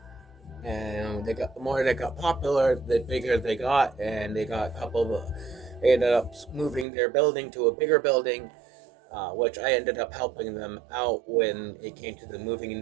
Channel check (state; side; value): drops out; left; at 6.9 s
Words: the more they got popular, the bigger they got, and they got a couple of. They ended up moving their building to a bigger building, which I ended up helping them out when it came to the moving